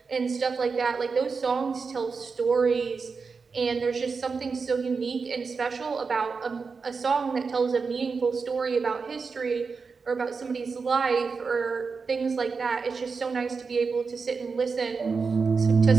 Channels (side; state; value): left; quieter; 4.9 dB